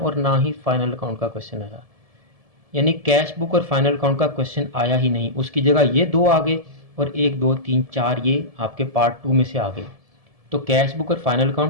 ना ही फाइनल अकाउंट का क्वेश्चन आया, यानी कैश बुक और फाइनल अकाउंट का क्वेश्चन आया ही नहीं। उसकी जगह ये 2 आ गए और 1 2 3 4 ये आपके पार्ट 2 में से आ गए। तो कैश बुक और फाइनल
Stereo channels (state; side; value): late; left; 1.7 ms